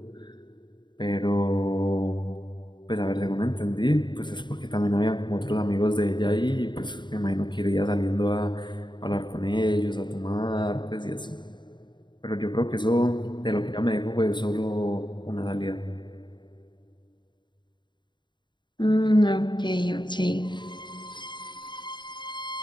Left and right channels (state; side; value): late; right; 0.22 ms